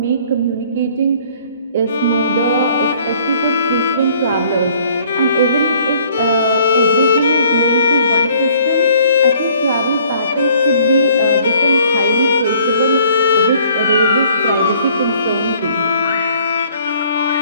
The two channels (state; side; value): inverted; both; correlation -0.59